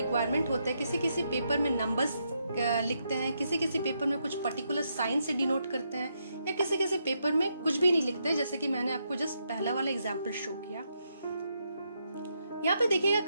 होते हैं, किसी किसी पेपर में नंबर्स लिखते हैं, किसी किसी पेपर में कुछ पर्टिकुलर साइन से डिनोट करते हैं, या किसी किसी पेपर में कुछ भी नहीं लिखते, जैसे कि मैंने आपको जस्ट पहला वाला एग्जांपल शो किया। यहाँ पे देखिएगा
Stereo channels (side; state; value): both; inverted; correlation -0.80